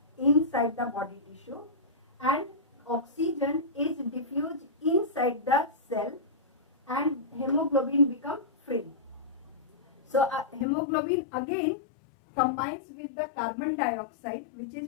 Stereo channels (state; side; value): drops out; right; at 10.7 s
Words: inside the body tissue and oxygen is diffused inside the cell and hemoglobin become free. So hemoglobin again combines with the carbon dioxide which is